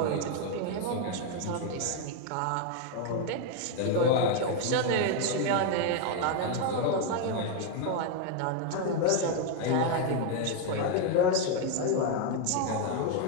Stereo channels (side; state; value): both; different; correlation 0.01